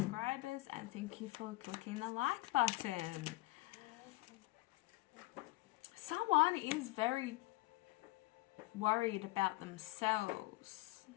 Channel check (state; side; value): quieter; right; 20.2 dB